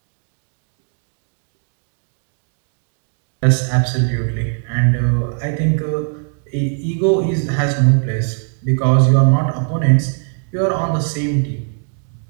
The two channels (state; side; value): silent; left; 58 dB below the other